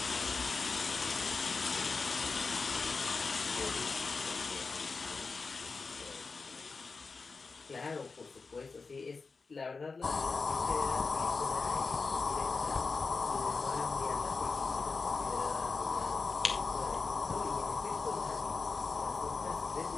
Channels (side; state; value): right; quieter; 4.4 dB